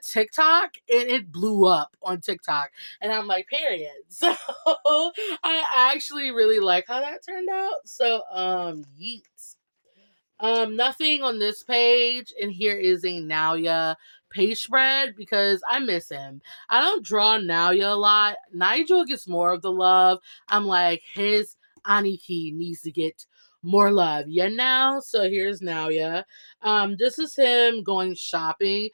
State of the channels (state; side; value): inverted; both; correlation -1.00